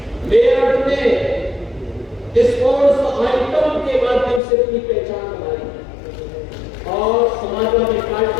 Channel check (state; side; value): drops out; right; at 4.4 s